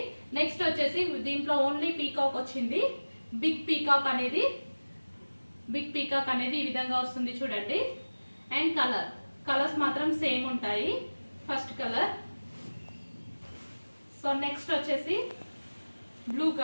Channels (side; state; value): both; inverted; correlation -1.00